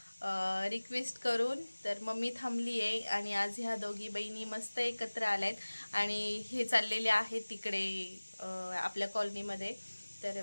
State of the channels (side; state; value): both; inverted; correlation -1.00